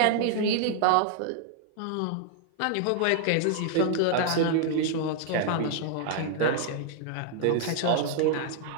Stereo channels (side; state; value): both; different; correlation 0.00